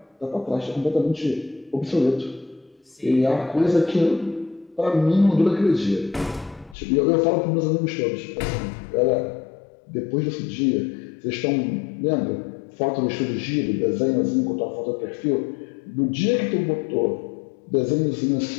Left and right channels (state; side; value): drops out; right; at 6.8 s